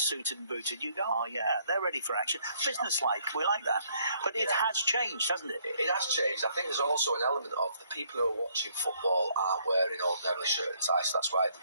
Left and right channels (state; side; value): inverted; both; correlation -0.66